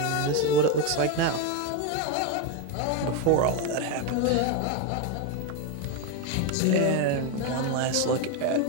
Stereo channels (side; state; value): both; different; correlation 0.02